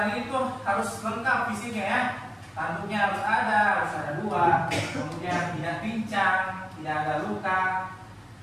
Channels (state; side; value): identical; both; correlation 1.00